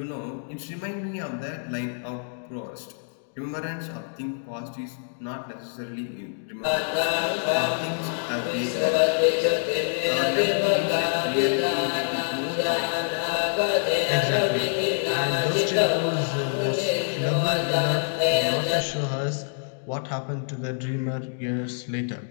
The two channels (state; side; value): silent; right; digital silence